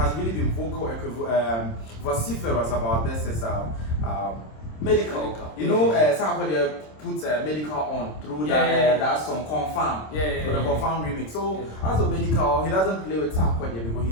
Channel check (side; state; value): right; late; 26 ms